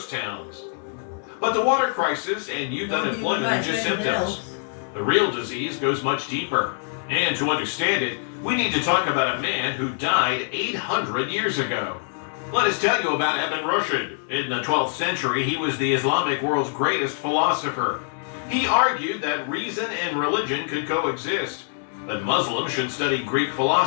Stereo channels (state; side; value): silent; right; digital silence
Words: towns. But the water crisis and youth unemployment are just symptoms. The real disease goes much deeper. And to understand it, we need to talk about a man who died 800 years ago. Let us tell you about Ibn Rushd. In the 12th century, he was the Islamic world's greatest philosopher. He argued that reason and religion could coexist, that Muslims should study Greek